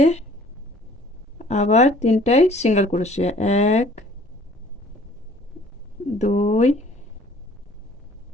আবার 3টায় সিঙ্গেল ক্রোশে, 1 2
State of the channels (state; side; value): normal; both; correlation 0.55